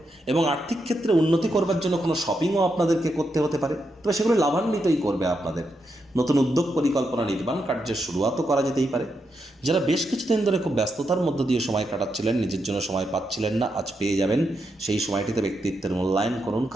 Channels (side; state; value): both; normal; correlation 0.83